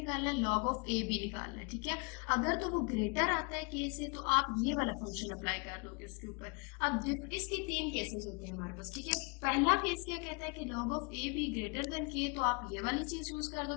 है, log ऑफ ए बी निकालना है। ठीक है, अगर तो वो ग्रेटर आता है के से तो आप ये वाला फंक्शन अप्लाई कर दोगे उसके ऊपर। अब इसके 3 केसेस होते हैं हमारे पास। ठीक है, पहला केस क्या कहता है कि log of a be greater than के, तो आप ये वाली चीज यूज कर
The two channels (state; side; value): quieter; right; 33.0 dB